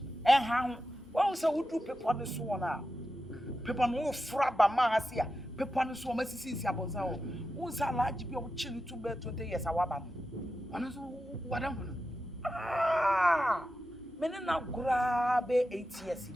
And how? Well, so would do people on the swan now. People no frabba mahasia. People on the swan, Mrs. Yabozao. Who's a large be of chili to bear 20 years? Our man. What am I? Ah, many now grab 8 years.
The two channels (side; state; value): both; normal; correlation 0.90